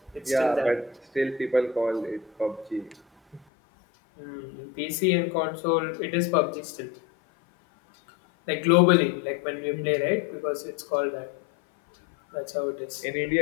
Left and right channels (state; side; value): drops out; right; at 3.5 s